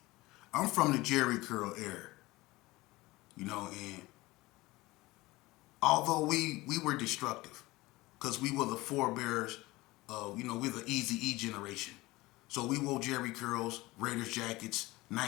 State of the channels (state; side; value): quieter; right; 20.3 dB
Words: I'm from the Jheri Curl era, you know, and although we were destructive, because we were the forebearers of, you know, we're the Easy-E generation. So we wore Jheri curls, Raiders jackets,